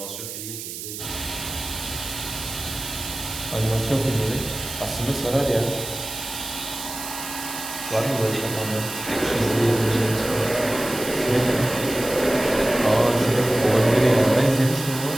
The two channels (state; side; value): noise; right; hiss, 9 dB below the sound